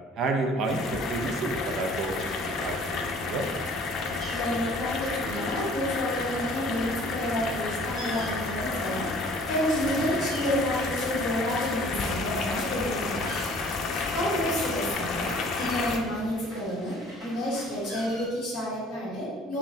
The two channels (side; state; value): both; normal; correlation 0.52